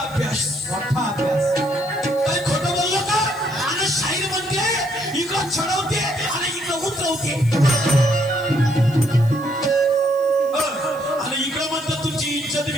काही खोटं बोललो का. आणि शाहीर म्हणते इकडं चढवते आणि इकडं उतरवते आणि इकडं म्हणतं तुमची इज्जत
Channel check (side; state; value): left; noise; hiss, 22 dB below the sound